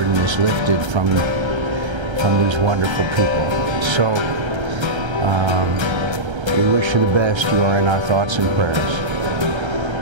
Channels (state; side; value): late; left; 1.3 ms